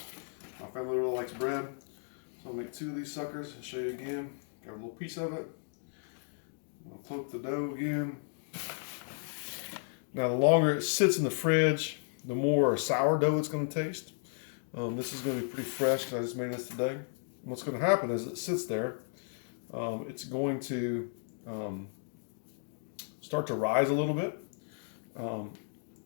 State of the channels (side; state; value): right; silent; digital silence